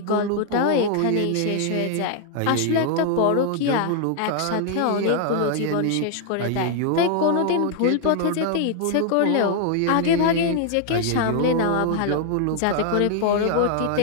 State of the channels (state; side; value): different; both; correlation 0.00